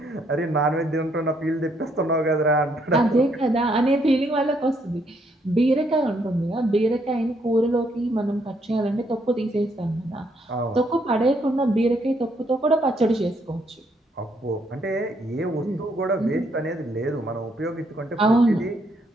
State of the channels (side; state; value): both; normal; correlation 0.72